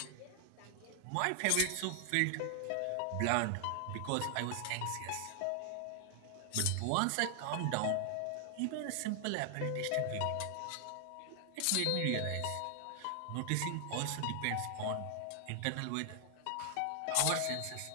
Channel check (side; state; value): both; different; correlation 0.00